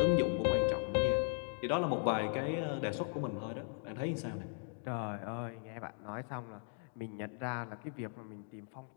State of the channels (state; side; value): silent; right; 52 dB below the other